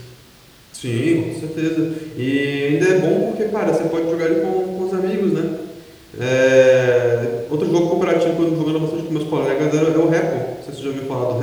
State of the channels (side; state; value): both; identical; correlation 1.00